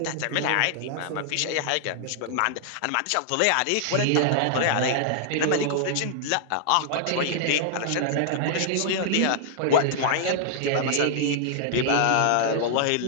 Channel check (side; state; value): both; different; correlation -0.01